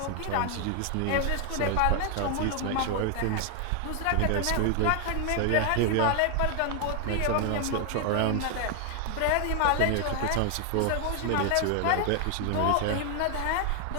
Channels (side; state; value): both; different; correlation 0.00